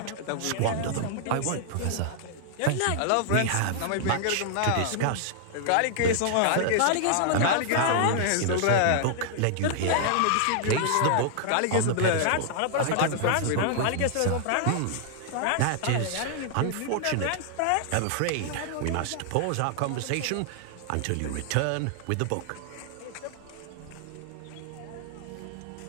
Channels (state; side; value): different; both; correlation -0.01